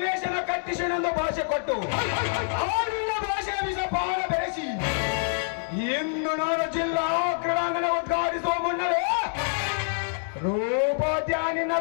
ಕಟ್ಟಿಸಿನೆಂದು ಭಾಷೆ ಕೊಟ್ಟು ಆಡಿನ ಭಾಷೆಯ ವಿಷ ಪಾಲ ಬೆರೆಸಿ ಇಂದು ನಾನು ಜಿಲ್ಲಾ ಕ್ರೀಡಾಂಗಣ ಉದ್ಘಾಟಿಸುವ ಮುನ್ನವೇ ರೂಪದ್ಯಾನಿನ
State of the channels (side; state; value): right; silent; digital silence